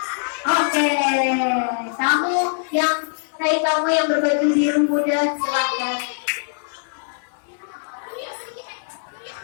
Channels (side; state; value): right; silent; digital silence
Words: Oke, kamu yang kamu yang berbaju biru muda, silakan.